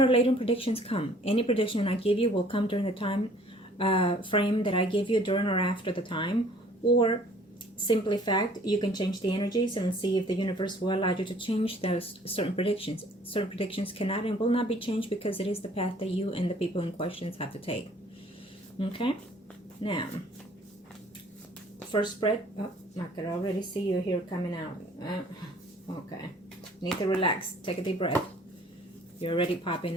or later predictions come. Any prediction I give you will come during the time frame that I give you during or after the time, or simply fact, you can change the energies and see if the universe will allow you to change those certain predictions. Certain predictions cannot and will not be changed because it is the path that you and the people in questions have to take. Okay, now first spread. Oh, I can already see you here coming out. Okay, need to relax, take a deep breath. You're already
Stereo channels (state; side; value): normal; both; correlation 0.55